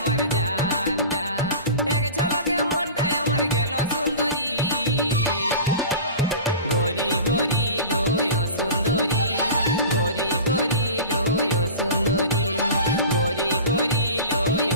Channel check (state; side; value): inverted; both; correlation -0.35